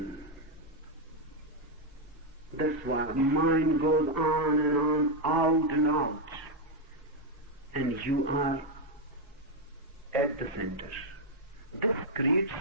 That's why mind goes on and on, out and out. And you are at the center. This creates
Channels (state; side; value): normal; both; correlation 0.02